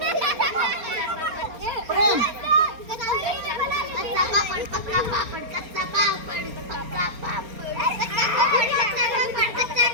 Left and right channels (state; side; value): late; left; 4.3 ms